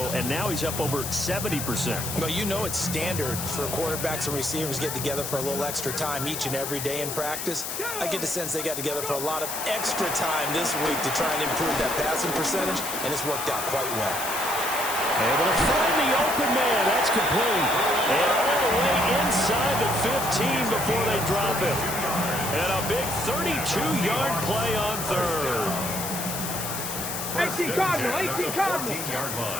and now he's up over 70%. Well, you know it's standard for quarterbacks and receivers to get together for a little extra time each and every day in practice. I get the sense they got together for a lot of extra time this week to try and improve that passing percentage, and it's worked out quite well. Able to find the open man. That's complete. And all the way inside the 15 before they drop it. And a big 32-yard play on third. 18 Cardinal, 18 Cardinal. 14-yard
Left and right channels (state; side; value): noise; left; hiss, 5 dB below the sound